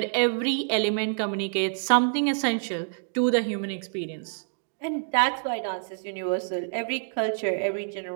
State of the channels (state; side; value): silent; left; digital silence